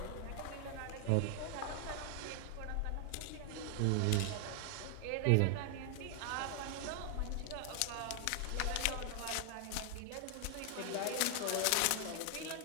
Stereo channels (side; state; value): both; different; correlation 0.00